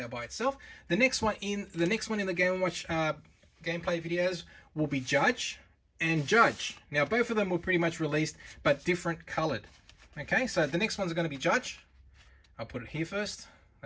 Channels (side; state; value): both; identical; correlation 1.00